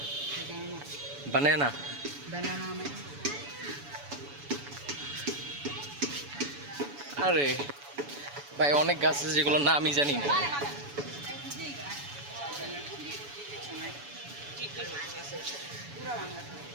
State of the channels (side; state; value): left; late; 7.0 ms